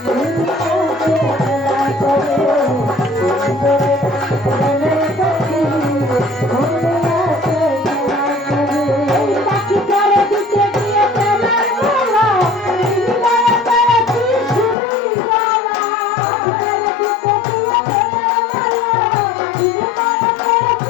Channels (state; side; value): drops out; right; at 14.8 s